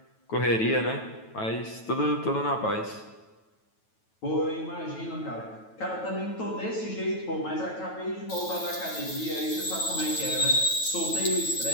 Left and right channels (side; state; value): right; late; 9.2 ms